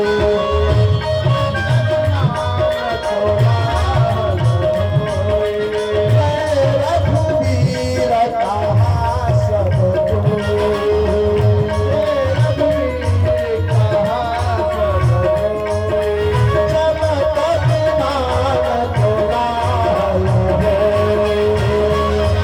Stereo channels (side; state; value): both; identical; correlation 1.00